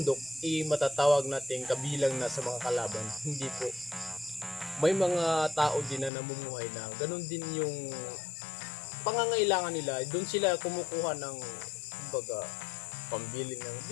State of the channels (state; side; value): drops out; right; at 6.1 s